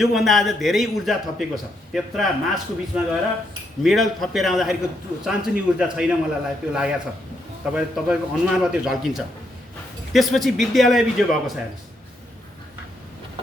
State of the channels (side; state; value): both; normal; correlation 0.77